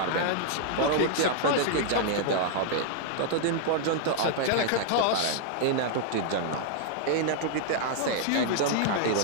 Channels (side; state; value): both; different; correlation -0.01